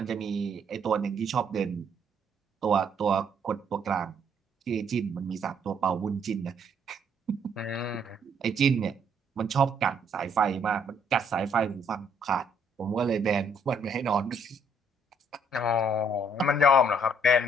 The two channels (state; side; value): normal; both; correlation 0.67